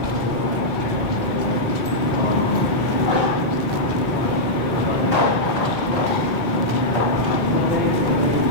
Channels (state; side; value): normal; both; correlation -0.08